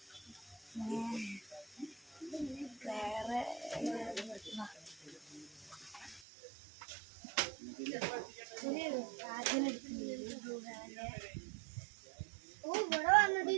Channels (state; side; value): drops out; left; at 6.2 s